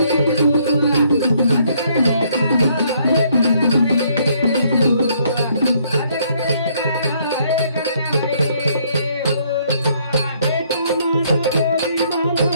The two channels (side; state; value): both; inverted; correlation -0.67